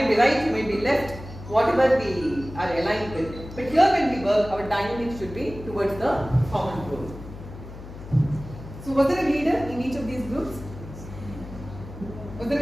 be right, you might be left, whatever we are aligned with. But here when we work, our dynamics should be towards the common goal. So was there a leader in each of these groups? Was there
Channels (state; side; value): noise; left; hum, 13 dB below the sound